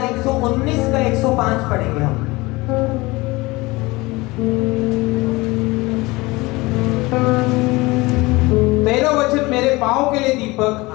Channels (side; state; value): right; quieter; 22.4 dB